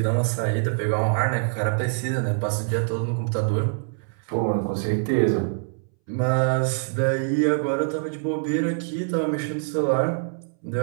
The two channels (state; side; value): silent; left; 62 dB below the other